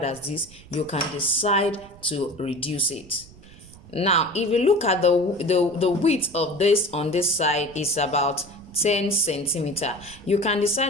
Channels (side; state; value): right; noise; rumble, 21 dB below the sound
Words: as this, you can decide to reduce it. Now if you look at the width of this on this side is about 10 centimeter. You can